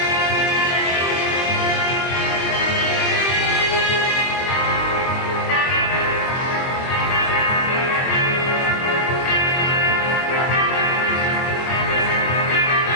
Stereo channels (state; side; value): late; right; 23 ms